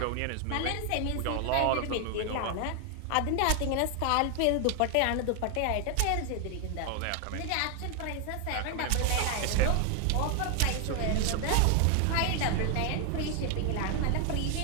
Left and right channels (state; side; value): different; both; correlation 0.00